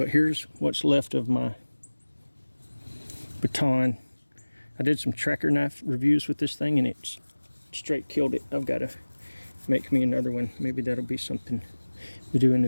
here's what's left of my baton. I did some tracker knife reviews with this thing, and it's straight killed it. I've got to make me another one. Maybe that'll be something we do in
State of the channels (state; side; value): inverted; both; correlation -1.00